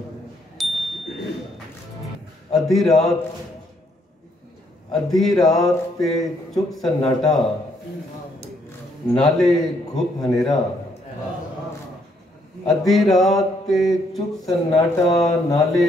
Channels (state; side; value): normal; both; correlation 0.71